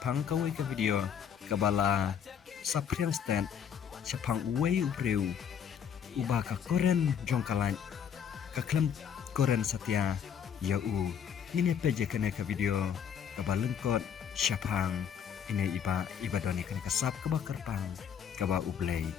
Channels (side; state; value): right; quieter; 8.0 dB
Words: kawai ke video kabala sapriang stand Jepang uwe ubreu ubah ka koren jongkalan ka klem koren setia ya u ini apa je kena ke video kabalengkot Jepang ini iba doni kena kasap kaba kerpang kaba ublay